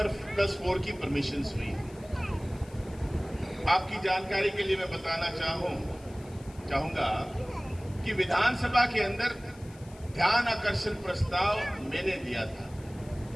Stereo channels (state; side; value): noise; left; hiss, 24 dB below the sound